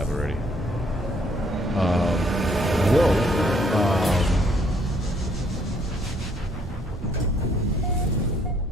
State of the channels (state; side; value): normal; both; correlation 0.66